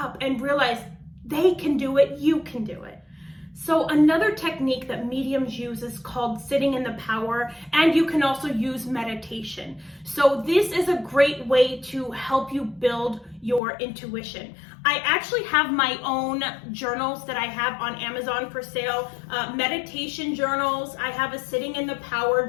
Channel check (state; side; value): drops out; right; at 13.6 s